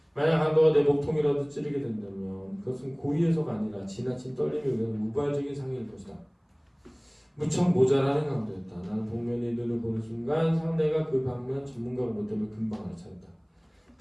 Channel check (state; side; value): identical; both; correlation 1.00